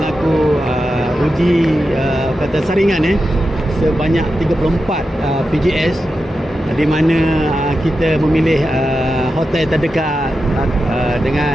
uji saringan sebanyak 34 PGS, di mana kita memilih hotel terdekat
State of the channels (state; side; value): normal; both; correlation 0.90